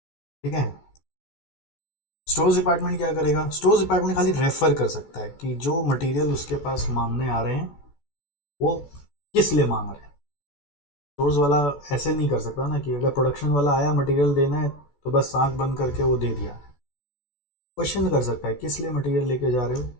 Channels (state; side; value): late; right; 14 ms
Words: ठीक है। स्टोर्स डिपार्टमेंट क्या करेगा, स्टोर्स डिपार्टमेंट खाली रेफर कर सकता है कि जो मटेरियल उसके पास मांगने आ रहे हैं वो किस लिए मांग रहे हैं। स्टोर्स वाला ऐसे नहीं कर सकता ना कि अगर प्रोडक्शन वाला आया मटेरियल देना है तो बस आंख बंद करके वो दे दिया। क्वेश्चन कर सकता है किस लिए मटेरियल लेके जा रहे हो,